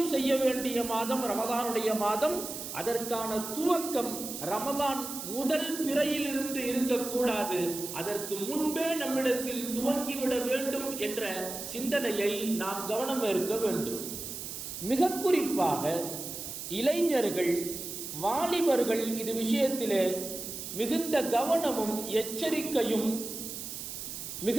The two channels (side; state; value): right; noise; hiss, 8 dB below the sound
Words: செய்ய வேண்டிய மாதம் ரமலானுடைய மாதம். அதற்கான துவக்கம் ரமலான் முதல் பிறையிலிருந்து இருக்கக்கூடாது. அதற்கு முன்பே நம்மிடத்தில் துவங்கிவிட வேண்டும் என்ற சிந்தனையை நாம் கவனம் இருக்க வேண்டும். மிக குறிப்பாக இளைஞர்கள், வாலிபர்கள் இது விஷயத்திலே மிகுந்த கவனமும் எச்சரிக்கையும்